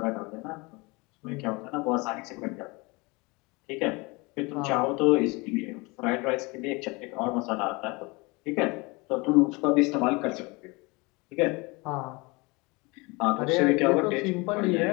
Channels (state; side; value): quieter; right; 26.1 dB